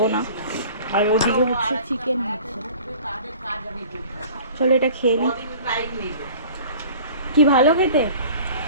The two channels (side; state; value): both; inverted; correlation -0.45